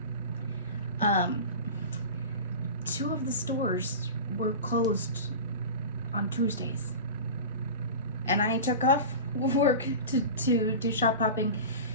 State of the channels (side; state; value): both; inverted; correlation -0.30